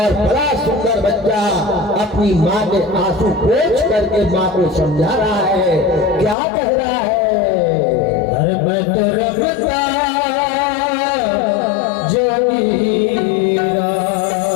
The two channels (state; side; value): drops out; right; at 6.4 s